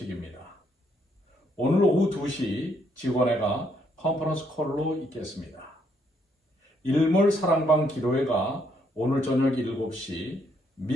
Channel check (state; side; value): normal; both; correlation 0.72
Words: 오늘 오후 2시 직원회가 컨퍼런스 콜로 있겠습니다. 일몰 사랑방 기도회가 오늘 저녁 7시